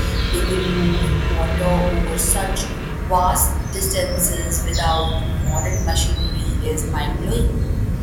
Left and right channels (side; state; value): both; identical; correlation 1.00